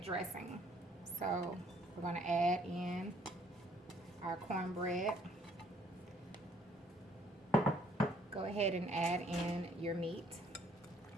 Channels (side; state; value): both; normal; correlation 0.63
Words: So we're going to add in our cornbread. Go ahead and add in your meat.